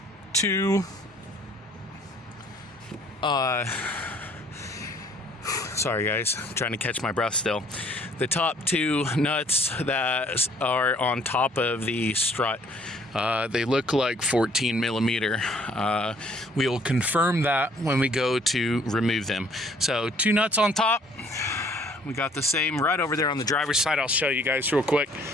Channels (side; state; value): both; normal; correlation 0.60